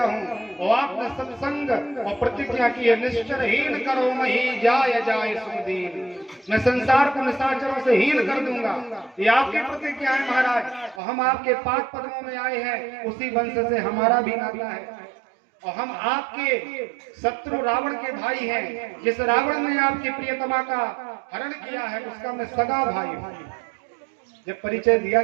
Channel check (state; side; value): drops out; left; at 11.0 s